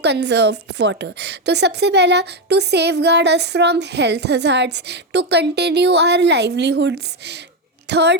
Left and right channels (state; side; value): normal; both; correlation 0.08